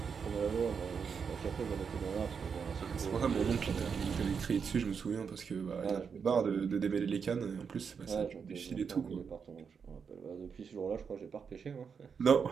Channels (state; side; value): quieter; left; 6.3 dB